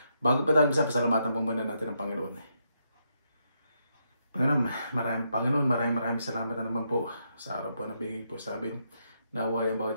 Bago pa tayo pasalamatan po muna natin ang Panginoon. Panginoon, maraming salamat na naman po sa araw po na bigay po sa amin. Naway ang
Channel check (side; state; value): both; inverted; correlation -0.79